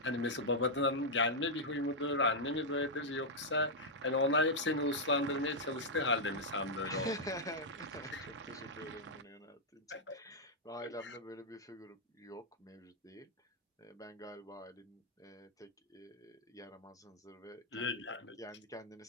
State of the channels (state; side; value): normal; both; correlation -0.05